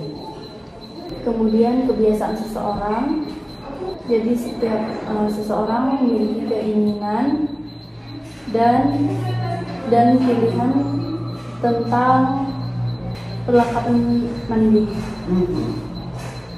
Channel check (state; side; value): identical; both; correlation 1.00